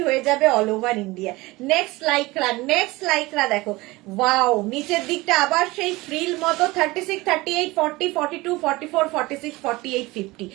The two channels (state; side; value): quieter; left; 21.2 dB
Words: হয়ে যাবে all over India. Next lycra দেখো, ওয়াও, নিচের দিকটা আবার সেই ফ্রিল মতো। 36, 38, 40, 42, 44, 46, 48, 50,